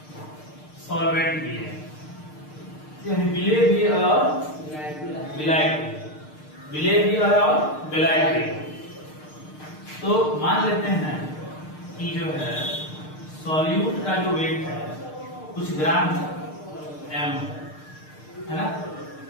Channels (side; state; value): right; late; 6.6 ms